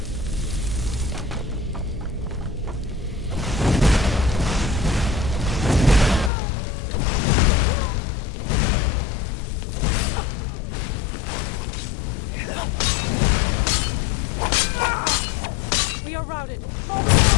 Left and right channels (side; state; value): right; drops out; at 6.3 s